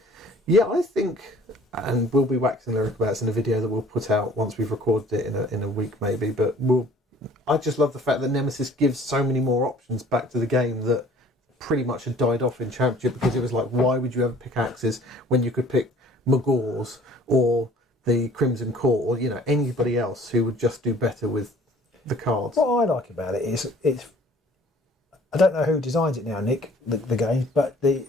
Yeah, I think, and we'll be waxing lyric about this in a video that we'll put out once we've recorded it in a week maybe. But I just love the fact that Nemesis gives so many more options back to the game that pretty much had died off in Championship, because it was like, why would you ever pick Axes when you could pick Magors or the Crimson Court, or anybody else who would just do better with the cards. What I like about it is I don't know who designs it now, Nick, the game, but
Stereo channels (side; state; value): both; normal; correlation 0.52